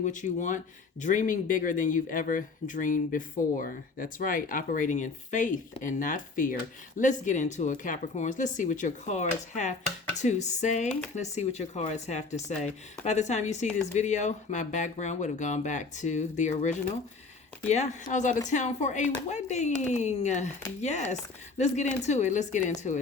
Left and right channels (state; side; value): quieter; right; 4.2 dB